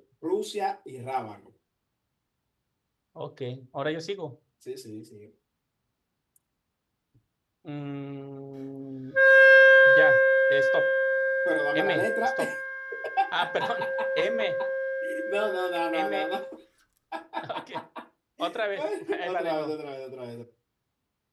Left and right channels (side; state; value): both; identical; correlation 1.00